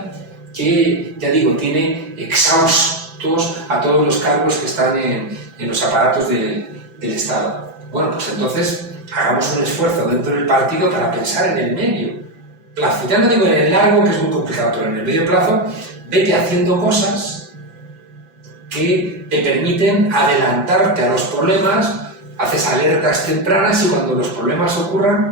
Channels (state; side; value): late; left; 5.9 ms